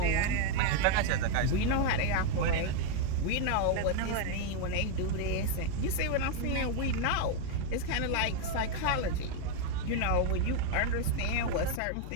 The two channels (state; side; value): different; both; correlation 0.01